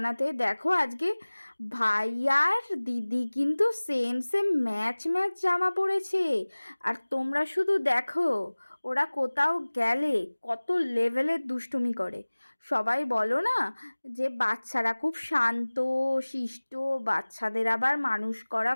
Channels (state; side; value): inverted; both; correlation -1.00